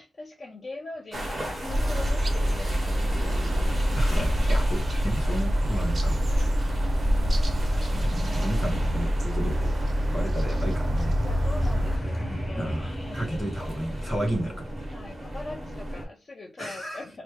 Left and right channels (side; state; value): both; normal; correlation 0.95